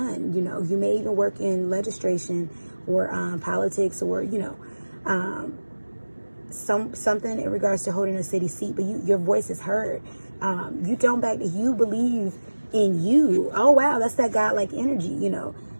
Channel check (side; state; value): both; inverted; correlation -1.00